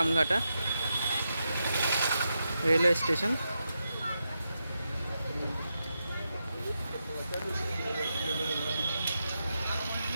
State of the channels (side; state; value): both; inverted; correlation -0.86